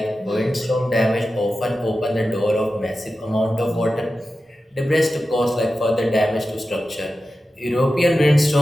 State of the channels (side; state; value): both; normal; correlation 0.93